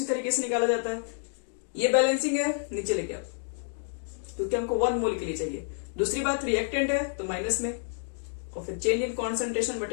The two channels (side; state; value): right; silent; digital silence